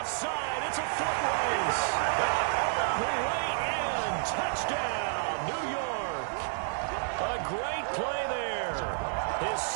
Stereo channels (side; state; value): left; silent; digital silence